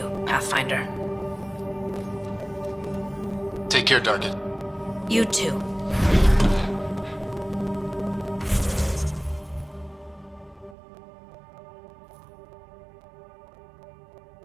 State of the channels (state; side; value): drops out; left; at 10.8 s